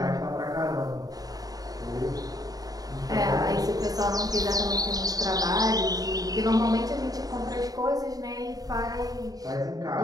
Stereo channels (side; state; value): left; late; 0.18 ms